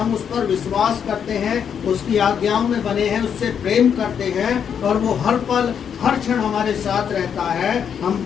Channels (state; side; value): quieter; right; 7.8 dB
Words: उस पर विश्वास करते हैं, उसकी आज्ञाओं में बने हैं, उससे प्रेम करते हैं और वो हर पल हर क्षण हमारे साथ रहता है, हम